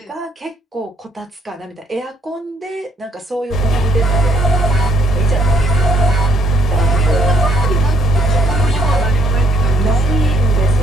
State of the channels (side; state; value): both; normal; correlation 0.67